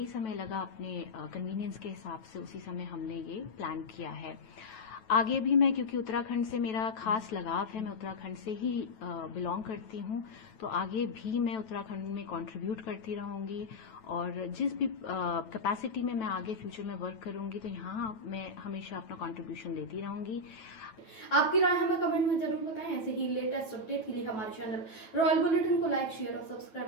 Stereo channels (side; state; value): right; late; 9.2 ms